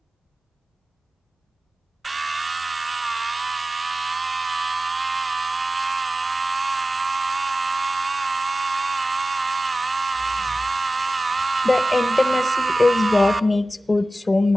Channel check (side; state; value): both; normal; correlation 0.94